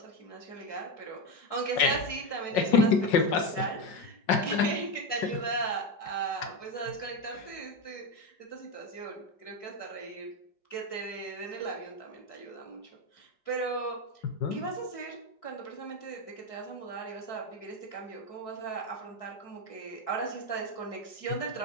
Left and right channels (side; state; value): right; late; 5.4 ms